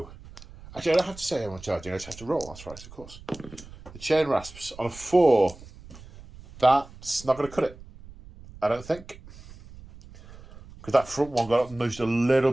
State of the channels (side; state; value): right; noise; rumble, 19 dB below the sound